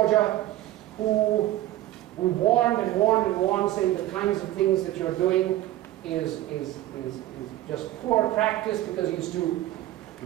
who warned and warned and warned, saying the kinds of things that you're doing is just poor practice, because he used to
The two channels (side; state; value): left; quieter; 14.6 dB